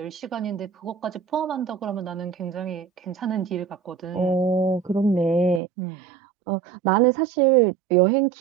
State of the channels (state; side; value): drops out; left; at 5.6 s